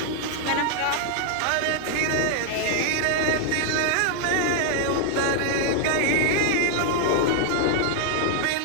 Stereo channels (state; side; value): different; both; correlation 0.00